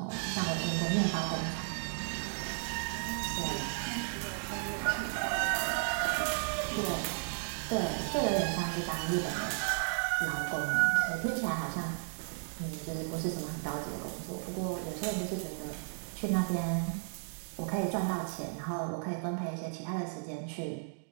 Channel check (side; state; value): left; silent; digital silence